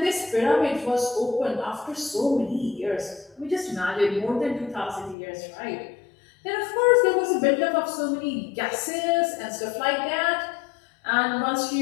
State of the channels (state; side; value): drops out; right; at 5.2 s